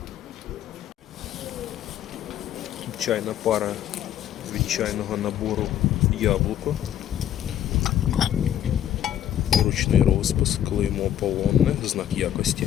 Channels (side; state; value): right; quieter; 10.8 dB